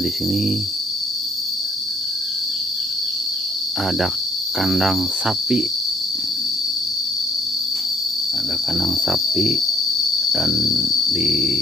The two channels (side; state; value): both; normal; correlation 0.65